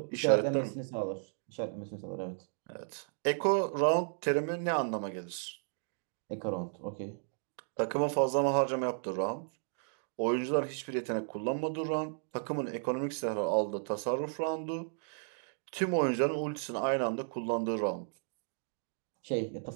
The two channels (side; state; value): left; silent; digital silence